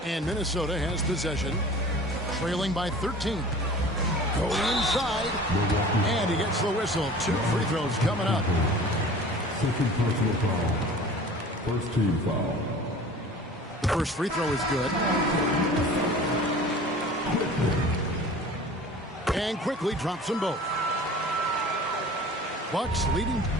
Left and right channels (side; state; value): both; normal; correlation 0.43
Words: And Minnesota has possession, trailing by 13. Going inside, and he gets the whistle. 2 free throws coming up. Second personal foul. First team foul. The first free throw is good. And quickly drops them both. Bucks leading